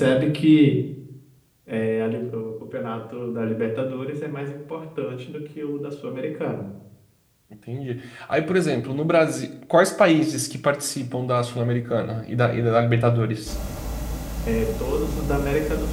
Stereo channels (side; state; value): both; identical; correlation 1.00